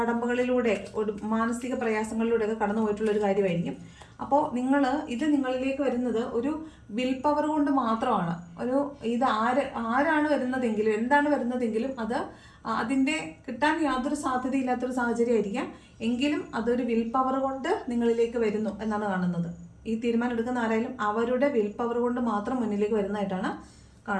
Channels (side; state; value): both; identical; correlation 1.00